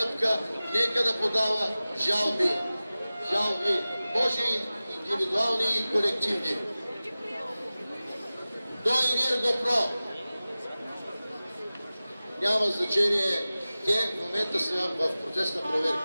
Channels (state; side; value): inverted; both; correlation -0.97